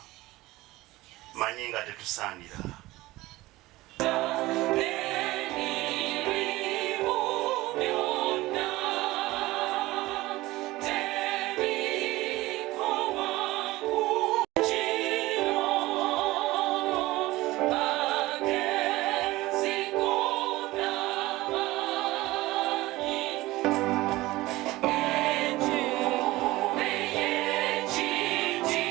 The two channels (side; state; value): left; quieter; 18.7 dB